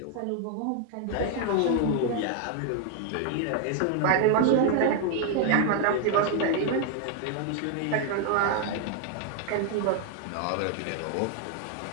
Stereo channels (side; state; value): both; different; correlation 0.00